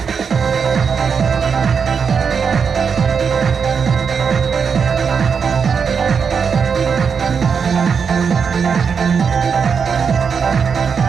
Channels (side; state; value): left; quieter; 6.2 dB